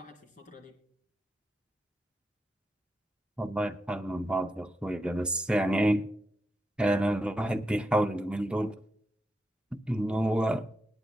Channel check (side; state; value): both; normal; correlation 0.86